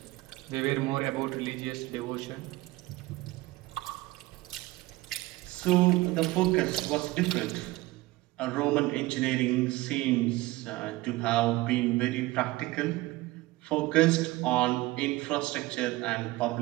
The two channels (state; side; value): quieter; left; 19.7 dB